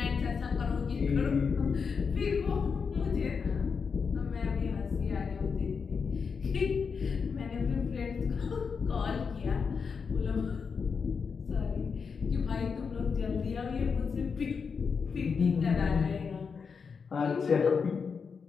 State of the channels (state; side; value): quieter; right; 5.7 dB